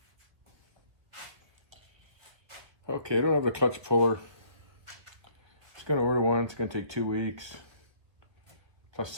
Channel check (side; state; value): left; late; 1.7 ms